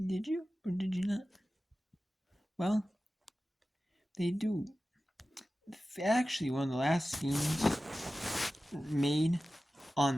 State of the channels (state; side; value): normal; both; correlation 0.95